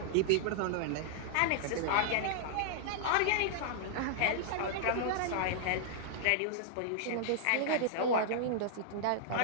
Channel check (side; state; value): both; different; correlation -0.01